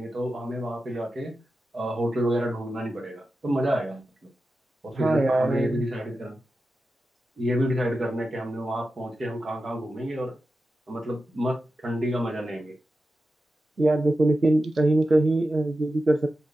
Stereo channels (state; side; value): normal; both; correlation 0.92